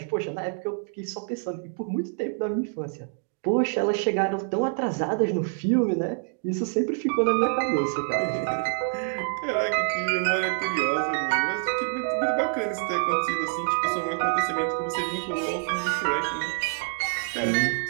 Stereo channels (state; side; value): silent; left; 59 dB below the other